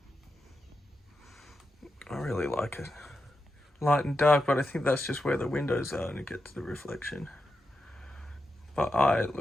I really like it. Light and dark, but I think that's just where the windows are and it gets the reflection. But it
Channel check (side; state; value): both; normal; correlation 0.88